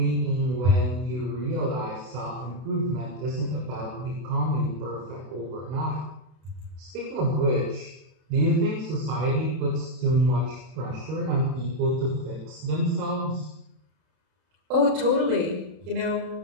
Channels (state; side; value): late; left; 32 ms